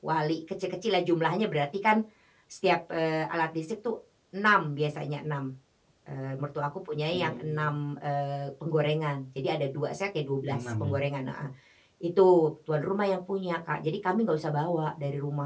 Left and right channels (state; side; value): identical; both; correlation 1.00